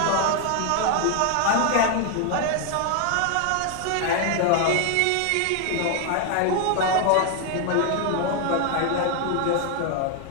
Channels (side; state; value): both; different; correlation 0.01